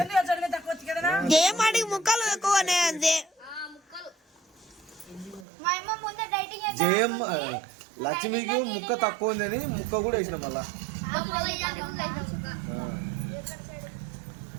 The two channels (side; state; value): left; drops out; at 5.5 s